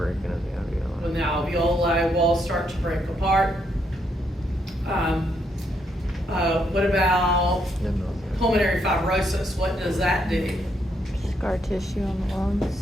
of the When the alveoli walls start to break apart. What about alveoli. pulmonary fibrosis? What does that do? Scar tissue on the lungs,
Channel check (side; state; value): both; normal; correlation 0.76